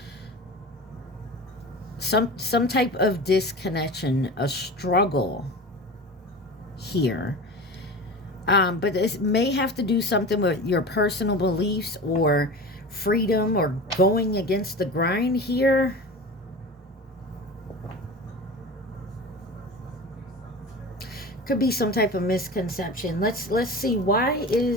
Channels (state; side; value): normal; both; correlation 0.33